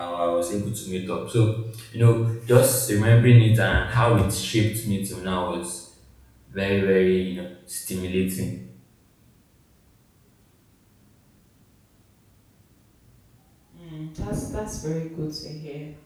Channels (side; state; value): both; identical; correlation 1.00